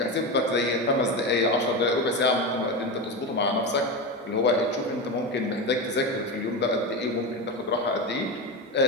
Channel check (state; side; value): normal; both; correlation 0.19